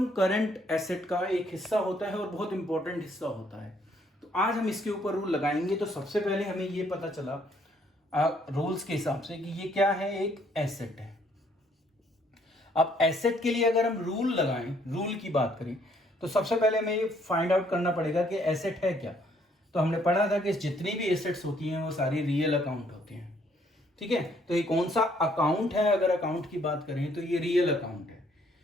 करंट एसेट का एक हिस्सा होता है और बहुत इंपॉर्टेंट हिस्सा होता है। तो आज हम इसके ऊपर रूल लगाएंगे। तो सबसे पहले हमें ये पता चला रूल्स के हिसाब से कि ये क्या है, एक एसेट है। अब एसेट के लिए अगर हम रूल लगाएं, रूल की बात करें, तो सबसे पहले हमें ये फाइंड आउट करना पड़ेगा कि एसेट है क्या। तो हमने पढ़ा था कि जितनी भी एसेट्स होती हैं वो सारी रियल अकाउंट होते हैं, ठीक है। तो ये कौन सा अकाउंट है, अगर अकाउंट की बात करें तो ये रियल अकाउंट है।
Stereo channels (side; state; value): both; normal; correlation 0.66